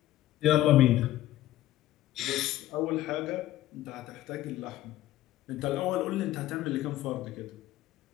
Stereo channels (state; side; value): quieter; right; 14.4 dB